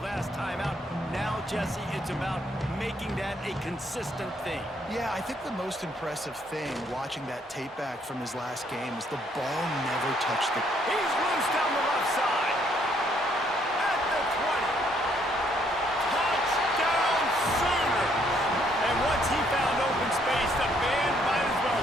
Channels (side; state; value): both; normal; correlation 0.68